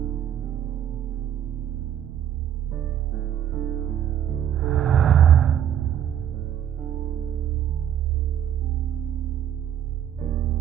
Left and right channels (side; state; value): left; quieter; 10.0 dB